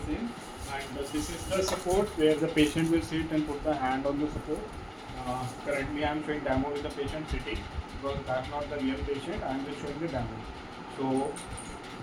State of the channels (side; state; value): both; identical; correlation 1.00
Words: same, and this is the support where the patient will sit and put the hand on the support. Currently I am showing demo with the patient sitting because that's not the real patient. I am just showing the demo. So